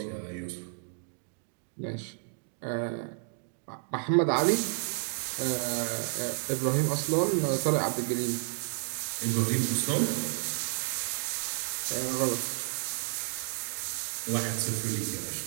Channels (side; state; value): left; silent; 57 dB below the other